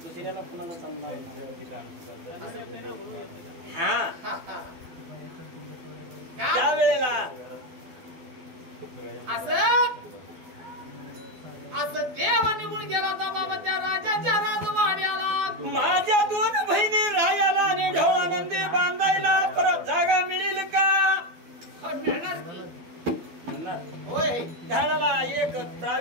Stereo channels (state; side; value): late; left; 12 ms